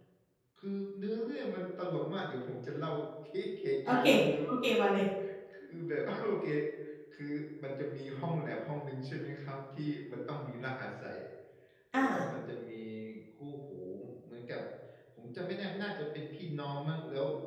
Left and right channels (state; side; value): identical; both; correlation 1.00